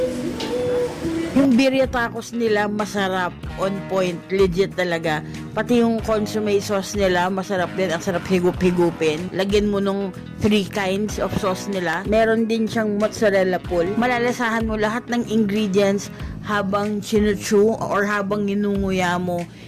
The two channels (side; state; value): both; identical; correlation 1.00